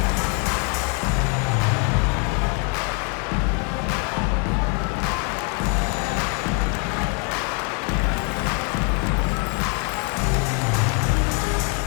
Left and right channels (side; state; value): right; quieter; 32.4 dB